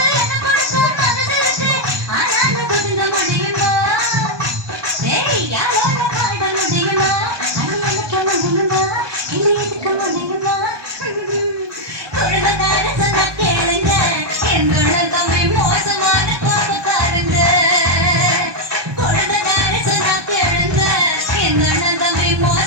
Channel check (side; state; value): left; late; 1.2 ms